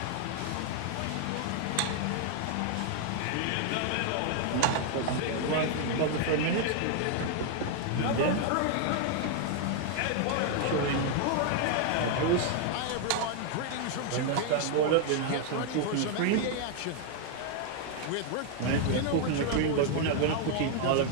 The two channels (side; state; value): both; different; correlation 0.00